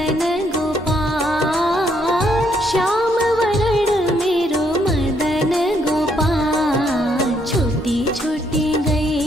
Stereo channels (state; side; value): normal; both; correlation 0.71